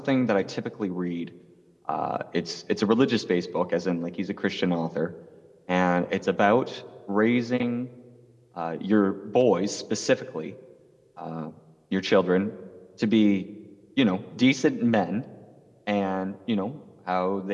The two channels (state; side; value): identical; both; correlation 1.00